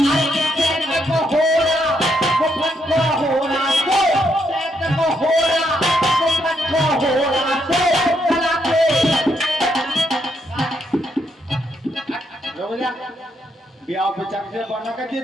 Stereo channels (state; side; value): normal; both; correlation 0.77